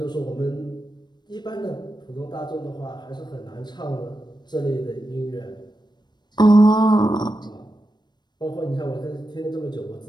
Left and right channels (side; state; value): right; late; 0.21 ms